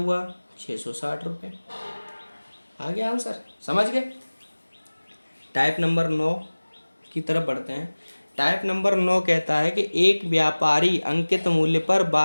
660 रुपये। आ गया आंसर, समझ गए? टाइप नंबर 9 की तरफ बढ़ते हैं। टाइप नंबर 9 कहता है कि एक व्यापारी अंकित मूल्य पर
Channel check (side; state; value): both; inverted; correlation -1.00